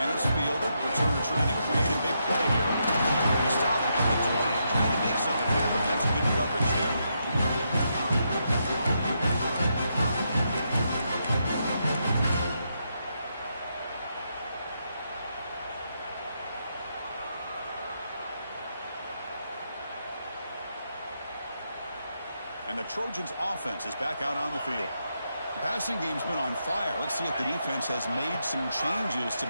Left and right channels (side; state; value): both; inverted; correlation -0.81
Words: it's fielded. Returner trying to create a big play here. He stopped at the 20, trying to make something happen. That's good coverage there. And the Trojans' offense is back out on the field. The passing game's been on fire. Let's see if the defense has made some changes to